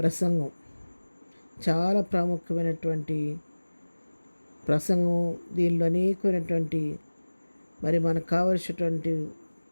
చాలా ప్రాముఖ్యమైనటువంటి ప్రసంగం. దీనిలో అనేకమైనటువంటి మనకు కావలసినటువంటి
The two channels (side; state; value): both; inverted; correlation -1.00